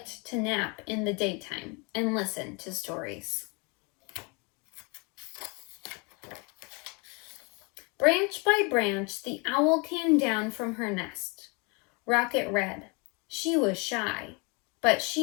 to nap in the daytime and listen to stories. Branch by branch, the owl came down from her nest. Rocket read. She was shy, but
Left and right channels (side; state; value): right; quieter; 31.1 dB